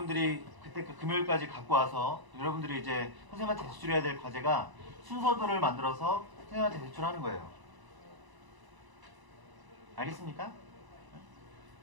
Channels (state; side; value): late; left; 1.0 ms